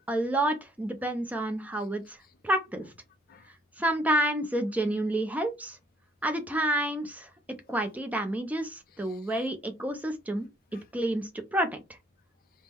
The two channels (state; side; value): normal; both; correlation 0.65